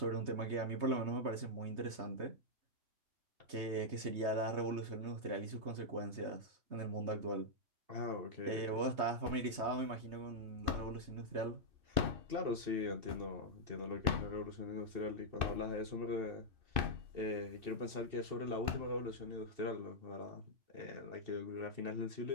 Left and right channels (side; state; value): left; late; 3.2 ms